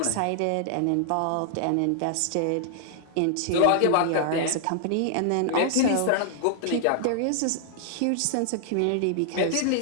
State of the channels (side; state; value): both; different; correlation -0.01